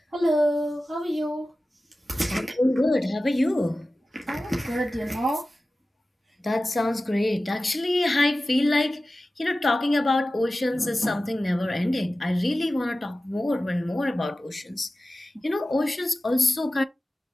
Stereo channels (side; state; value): both; normal; correlation 0.95